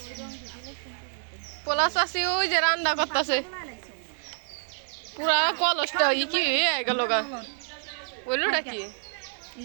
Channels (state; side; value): silent; left; 60 dB below the other